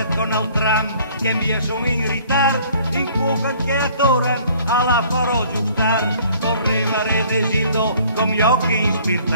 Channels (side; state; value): both; inverted; correlation -0.55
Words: con il tram, che via sono in ritardo, in cuoca che attoran, alla farò giustar. Correva Re Desildo con gli occhi